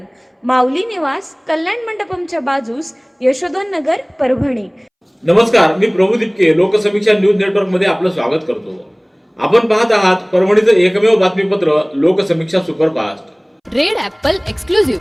माऊली निवास, कल्याण मंडपमच्या बाजूस, यशोधन नगर, परभणी। नमस्कार, मी प्रभू दिपके लोकसमीक्षा न्यूज नेटवर्क मध्ये आपलं स्वागत करतो। आपण पाहत आहात परभणीचं एकमेव बातमीपत्र Loksamiksha superfast. Red Apple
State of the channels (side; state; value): both; identical; correlation 1.00